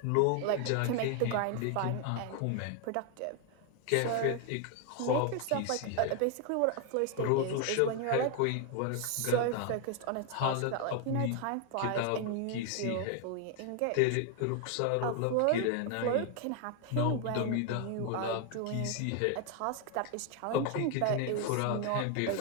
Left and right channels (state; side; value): different; both; correlation 0.00